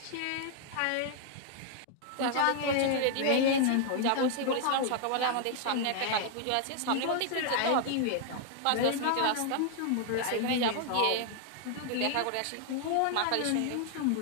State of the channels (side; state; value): both; different; correlation 0.00